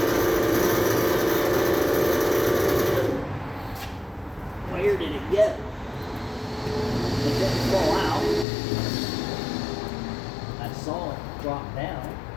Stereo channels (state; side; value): drops out; right; at 8.5 s